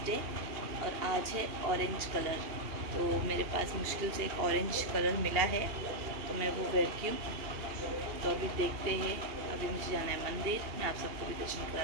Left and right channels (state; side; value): late; left; 2.8 ms